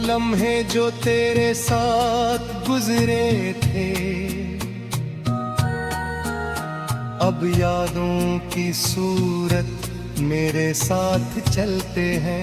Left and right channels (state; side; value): identical; both; correlation 1.00